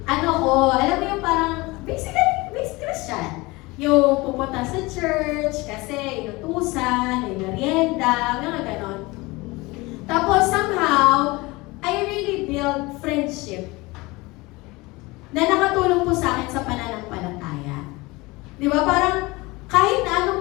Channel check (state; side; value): quieter; right; 22.8 dB